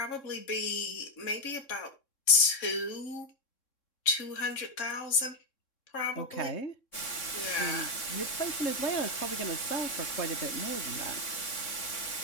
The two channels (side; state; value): right; late; 3.7 ms